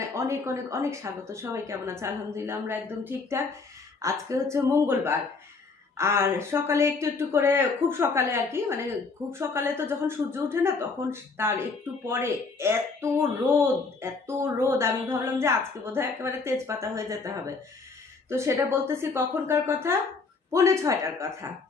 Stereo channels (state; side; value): quieter; right; 4.3 dB